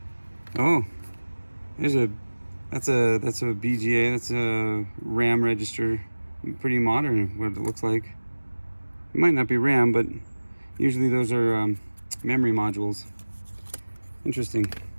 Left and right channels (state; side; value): inverted; both; correlation -1.00